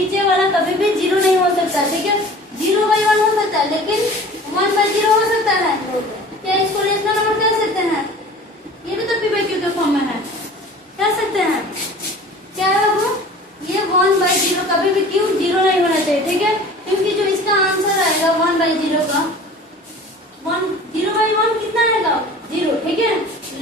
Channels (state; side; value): normal; both; correlation 0.43